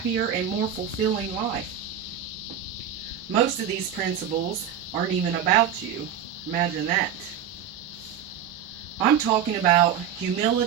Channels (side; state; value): left; quieter; 8.7 dB